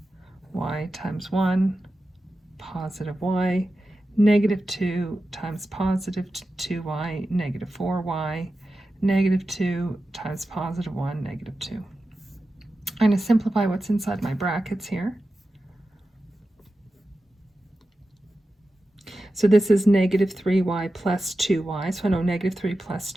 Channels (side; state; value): both; normal; correlation 0.92